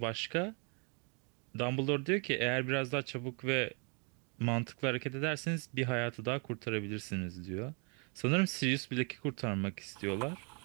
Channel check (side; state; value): left; quieter; 36.7 dB